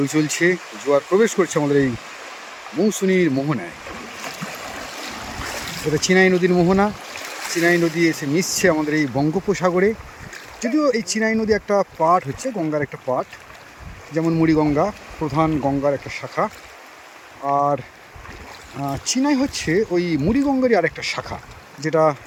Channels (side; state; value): both; identical; correlation 1.00